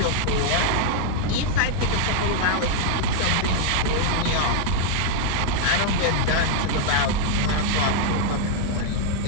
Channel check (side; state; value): both; different; correlation -0.01